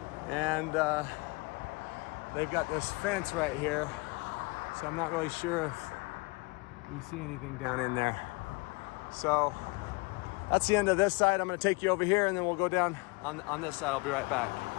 And they've got this fence right here. So I'm not really sure if we see anything down in there. So that's the end of this side. I'm gonna take you over here and then we'll go down on this side. I'll be right back.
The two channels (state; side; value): quieter; right; 27.1 dB